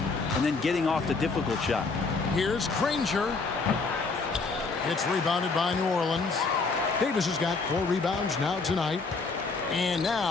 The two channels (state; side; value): quieter; right; 4.2 dB